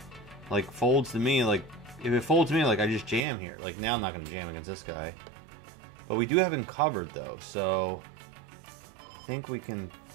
like, folds to me, like, if it folds to me, like, I just jam here. Like, now I'm not going to jam against this guy. But we do have him covered, though, so I think we can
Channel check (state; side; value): drops out; left; at 3.2 s